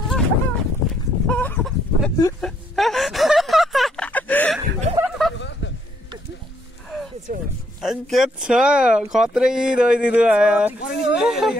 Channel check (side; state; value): both; normal; correlation 0.71